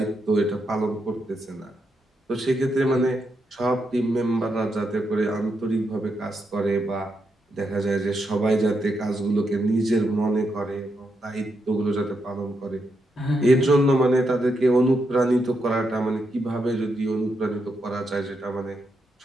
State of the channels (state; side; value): normal; both; correlation 0.82